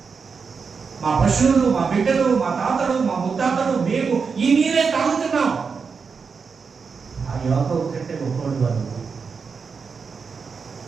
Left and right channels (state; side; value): quieter; left; 5.4 dB